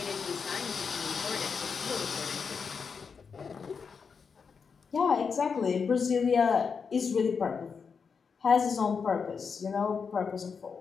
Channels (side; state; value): right; quieter; 5.8 dB